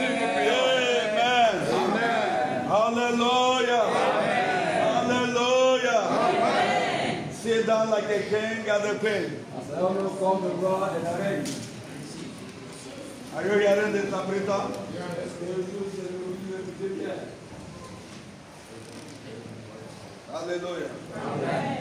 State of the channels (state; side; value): identical; both; correlation 1.00